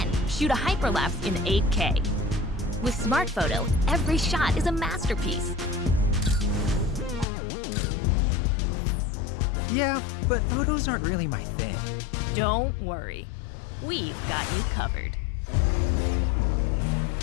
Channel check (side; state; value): right; drops out; at 7.2 s